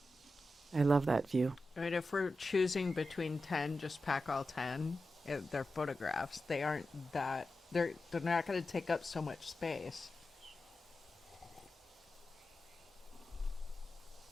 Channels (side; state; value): both; normal; correlation 0.92